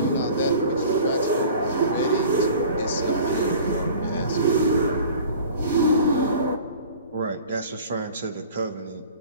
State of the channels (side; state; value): both; inverted; correlation -0.44